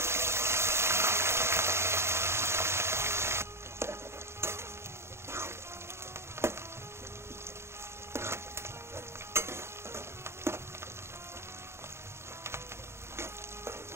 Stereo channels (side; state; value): left; late; 0.13 ms